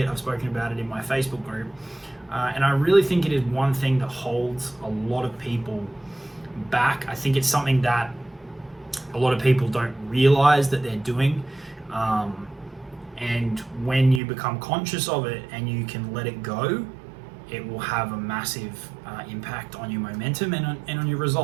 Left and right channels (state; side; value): drops out; left; at 14.2 s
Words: I've spoken about it in my Facebook group, and I really think it is one thing that holds a lot of people back. I think it's something that a lot of people don't realize that they're doing. And when you become conscious of it and you can let it go, it will have a massive impact on your momentum and on your